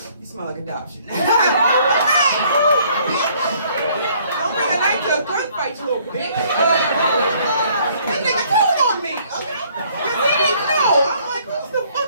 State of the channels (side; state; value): both; inverted; correlation -0.61